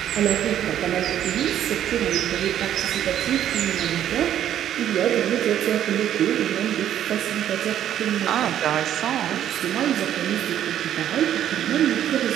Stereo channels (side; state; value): left; quieter; 10.9 dB